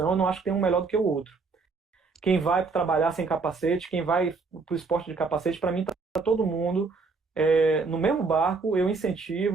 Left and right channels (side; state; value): left; quieter; 4.4 dB